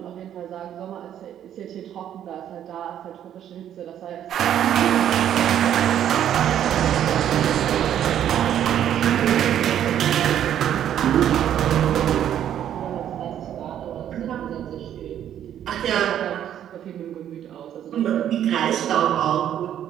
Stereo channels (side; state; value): left; quieter; 10.4 dB